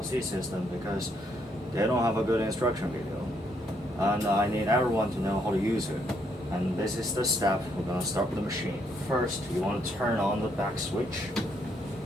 system because they don't have a good instruction video, and I need everyone to know how to use it. And this is the step. We're gonna start with the machine. First, you want to turn on the back switch,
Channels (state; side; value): normal; both; correlation 0.73